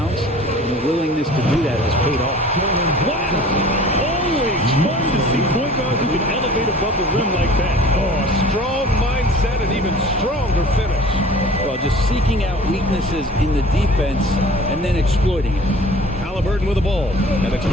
and the willingness to do that has paid off. Wow! Always fun to see point guards who can elevate above the rim like that. Oh, a strong mindset and even stronger finish. Well, just seeking out weaknesses in the defense and then exploiting it. Halliburton with the ball, and it's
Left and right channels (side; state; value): both; normal; correlation 0.45